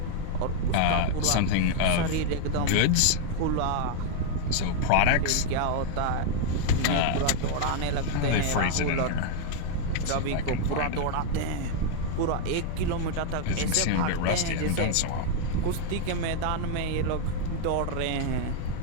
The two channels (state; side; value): different; both; correlation 0.00